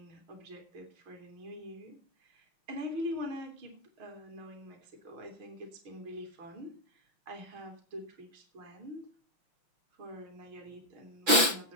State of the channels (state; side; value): late; left; 5.9 ms